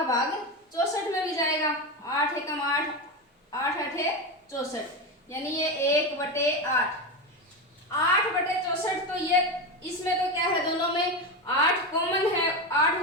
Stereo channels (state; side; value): normal; both; correlation 0.17